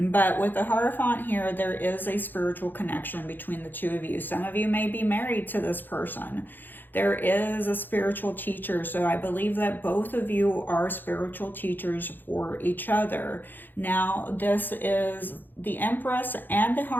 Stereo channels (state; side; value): late; right; 0.091 ms